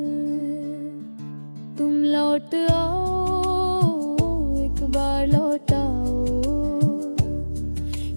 तुम लौट आओ, एक बार लौट आओ,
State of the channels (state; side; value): inverted; both; correlation -1.00